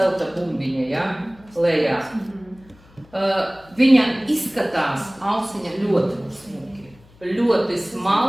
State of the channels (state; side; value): noise; left; hum, 27 dB below the sound